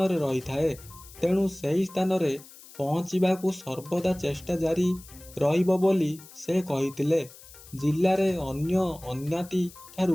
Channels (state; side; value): noise; left; hiss, 20 dB below the sound